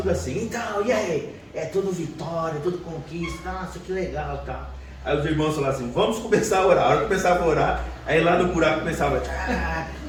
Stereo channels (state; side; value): identical; both; correlation 1.00